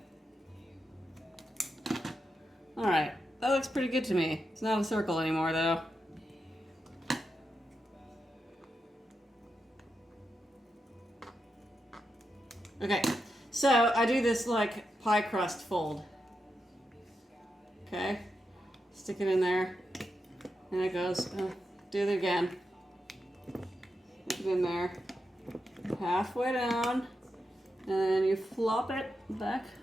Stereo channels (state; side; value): normal; both; correlation 0.87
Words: All right, that looks pretty good to me. It's not a circle anymore, though. Okay, so I do this like pie crust fold. Okay, stick it in there, and it goes, do it again. Stick it in there, halfway down, and then you flop it back